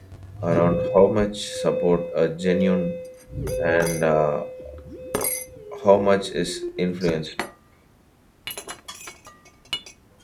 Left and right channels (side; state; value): both; identical; correlation 1.00